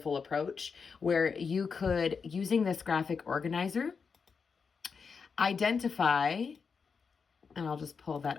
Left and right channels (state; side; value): quieter; right; 5.6 dB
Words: approach where you could, using this graphic organizer, identify, and I'll just pull